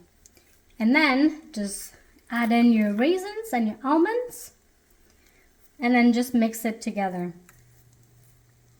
And then just add in your raisins and your almonds and then just mix it together.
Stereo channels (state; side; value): identical; both; correlation 1.00